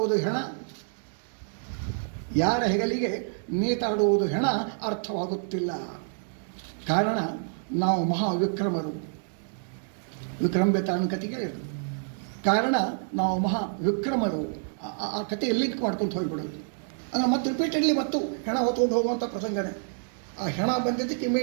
ಹೆಣ? ಯಾರ ಹೆಗಲಿಗೆ ನೇತಾಡುವುದು ಹೆಣ ಅರ್ಥವಾಗುತ್ತಿಲ್ಲ. ಕಾರಣ ನಾವು ಮಹಾವಿಕ್ರಮರು. ವಿಕ್ರಮೆ ತಾನು ಕತೆ ಕೇಳಿದ್ರು. ಕಾರಣ ನಾವು ಮಹಾವಿಕ್ರಮರು. ಆ ಕತೆ ಲಿಂಕ್ ಮಾಡ್ಕೊಂಡು ಹೋಗ್ಬಿಡೋದು. ಅಂದರೆ ಮತ್ತೆ ರಿಪೀಟೆಡ್ಲಿ ಮತ್ತು ಹೆಣ ಹೊತ್ಕೊಂಡು ಹೋಗುವಂಥ ಪ್ರಸಂಗನೇ. ಆ ಹೆಣ ಬಂದಿದ್ದಕ್ಕೆ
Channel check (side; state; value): left; silent; digital silence